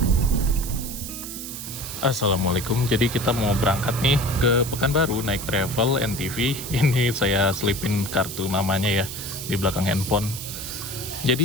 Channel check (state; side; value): noise; right; hiss, 9 dB below the sound